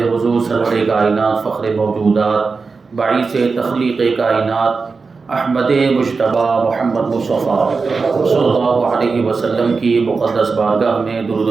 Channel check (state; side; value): quieter; left; 4.5 dB